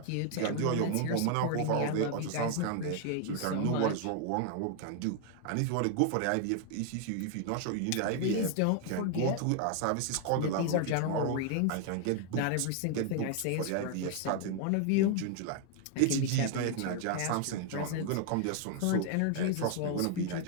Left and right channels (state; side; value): different; both; correlation 0.00